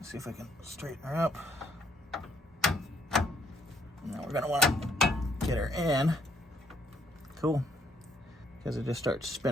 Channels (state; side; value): normal; both; correlation 0.70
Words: see if I can straighten her up. Now we're gonna want to get her in. Cool. Because it just starts